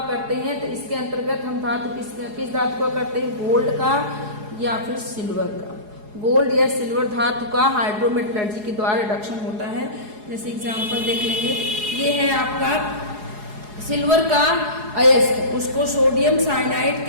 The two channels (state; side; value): late; left; 4.8 ms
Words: करते हैं? तो इसके अंतर्गत हम धातु किस धातु का करते हैं? गोल्ड का या फिर सिल्वर का। गोल्ड या सिल्वर धातु का हाइड्रोमेटलर्जी के द्वारा रिडक्शन होता है। जैसे एग्जाम्पल देख लेंगे, ये है आपका सिल्वर का अयस्क, उसको सोडियम साइनाइड